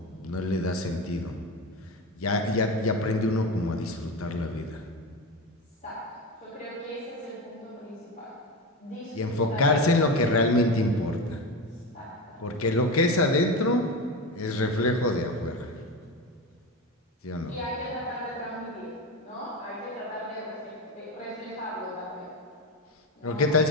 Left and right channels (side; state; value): both; normal; correlation 0.22